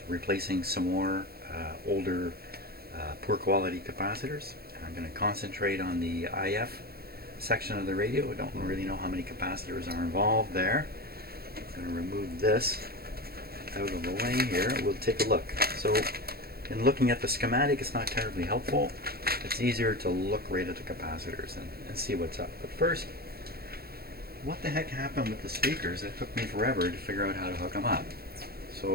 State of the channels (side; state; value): left; late; 0.45 ms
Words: replacing some more older, poor quality capacitors. I'm going to concentrate on the IF section of the radio. I don't really know how many capacitors are involved there. I'm going to remove this out of the way here. We'll take a look. So in looking at the schematic, it's not terribly helpful. It's easier to look right at the capacitors and see what's up. But first, what the heck happened with the speakers? It took me forever to figure out how to hook them up.